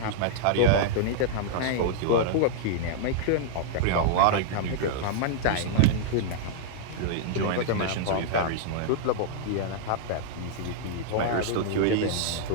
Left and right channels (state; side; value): different; both; correlation -0.01